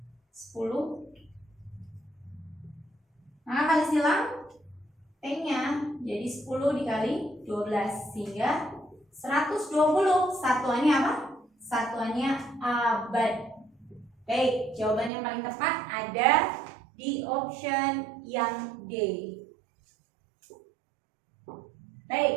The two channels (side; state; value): left; drops out; at 15.1 s